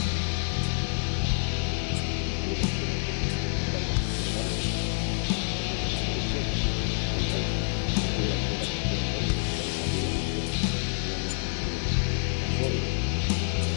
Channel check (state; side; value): silent; right; 60 dB below the other